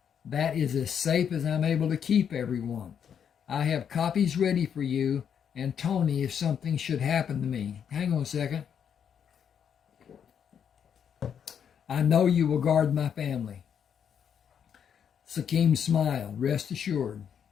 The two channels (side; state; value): right; quieter; 8.0 dB